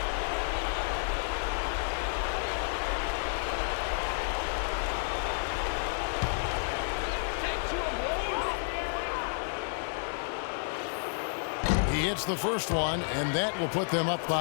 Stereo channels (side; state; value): right; silent; 57 dB below the other